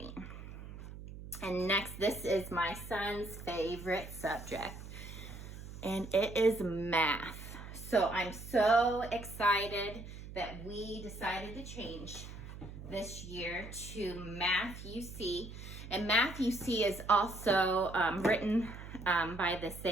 And next, this is my son's favorite subject, and it is math. So I'm so excited that we decided to change this year to Math UC. And Math UC is also written by the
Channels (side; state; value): right; noise; hum, 12 dB below the sound